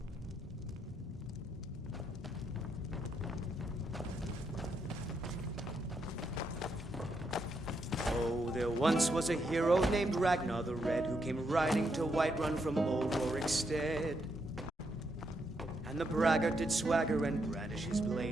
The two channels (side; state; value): both; normal; correlation 0.79